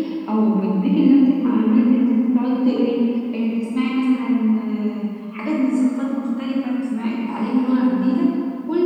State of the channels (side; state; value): both; identical; correlation 1.00